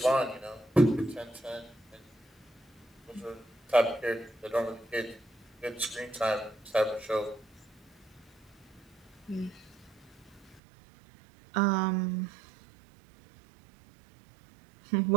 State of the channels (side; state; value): left; drops out; at 10.6 s